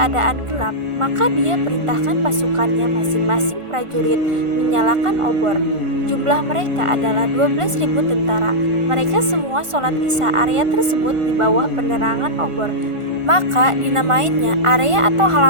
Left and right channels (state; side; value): late; left; 1.5 ms